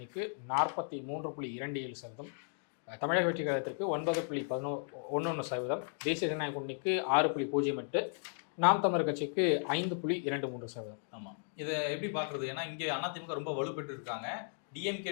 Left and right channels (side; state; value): right; silent; digital silence